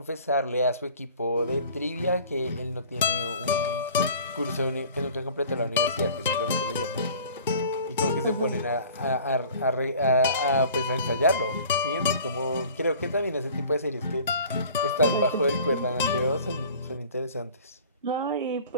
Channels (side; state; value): both; inverted; correlation -0.47